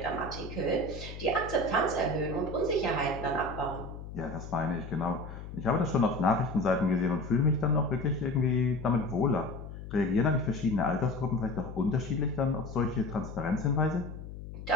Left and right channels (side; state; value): left; noise; hum, 11 dB below the sound